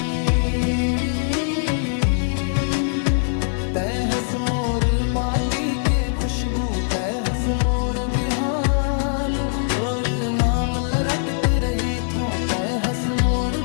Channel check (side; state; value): right; silent; 59 dB below the other